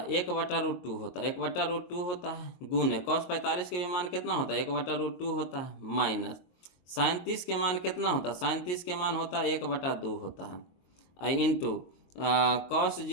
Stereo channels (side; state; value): right; late; 22 ms